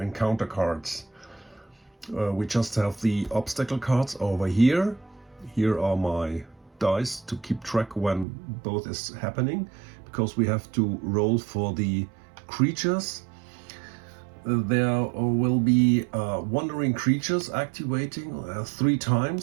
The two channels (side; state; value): left; drops out; at 8.2 s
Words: encounter cards. We just have the obstacle cards over here. Here are my dice to keep track when both is happening, because we have to roll for the creatures. There will be wandering creatures activating 3